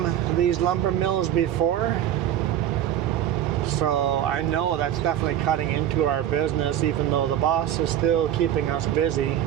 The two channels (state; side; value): quieter; left; 11.0 dB